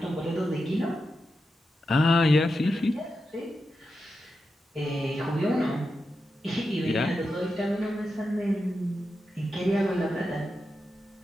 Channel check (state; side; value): normal; both; correlation 0.89